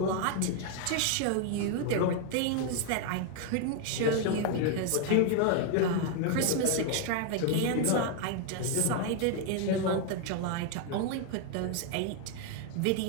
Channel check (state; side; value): different; both; correlation 0.00